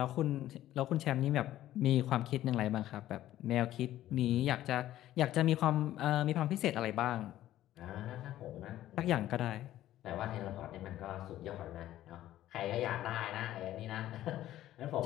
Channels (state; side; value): quieter; right; 13.6 dB